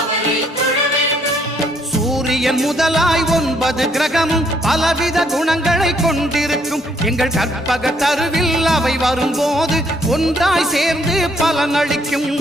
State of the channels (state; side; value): normal; both; correlation 0.68